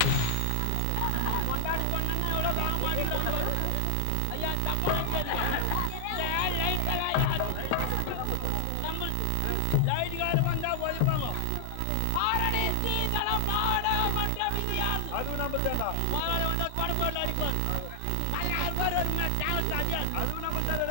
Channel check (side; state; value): both; different; correlation 0.00